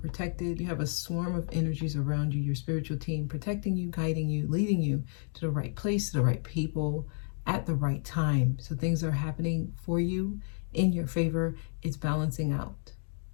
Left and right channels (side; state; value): right; silent; 57 dB below the other